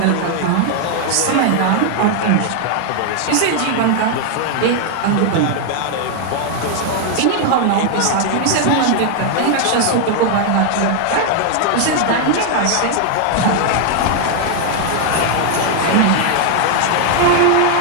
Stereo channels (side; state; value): both; different; correlation 0.00